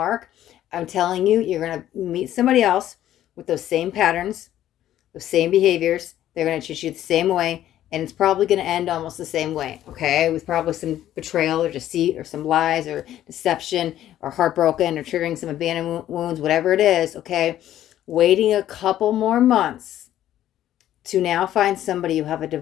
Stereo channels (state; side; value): quieter; right; 12.4 dB